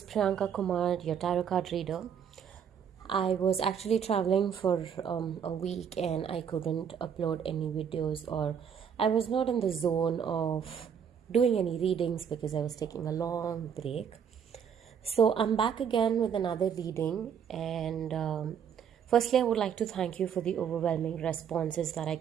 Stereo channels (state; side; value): quieter; left; 7.7 dB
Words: Priyanka Kumar, your tarot card reader. I was actually traveling for a week and I couldn't upload any videos, or I was not in the zone of doing any readings because I was taking a long break. So I'm back again with another reading, and firstly, I would like to thank you for the overwhelming responses that I